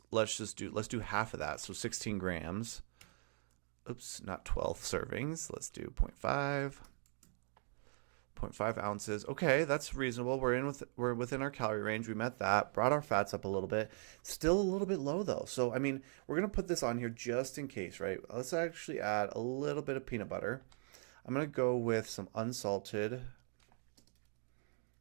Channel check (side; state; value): left; silent; 51 dB below the other